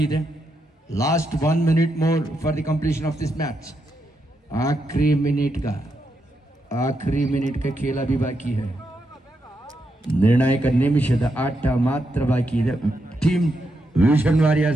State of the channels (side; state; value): both; normal; correlation 0.83